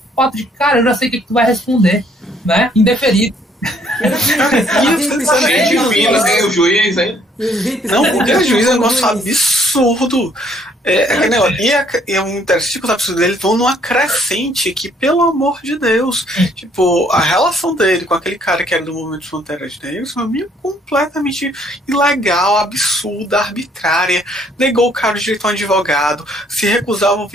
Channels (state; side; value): normal; both; correlation 0.64